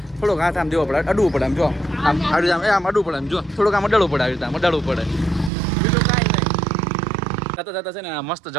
થોડોક હાથ આમ દેવો પડે અડવું પડે આમ જો આમ અડવું પડે આમ જો થોડુંક આમ અડાડવું પડે આવી રીતે આમ અડાડવું પડે બીજું કાંઈ નહીં જતા જતા છે ને આ મસ્ત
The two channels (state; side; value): drops out; left; at 5.5 s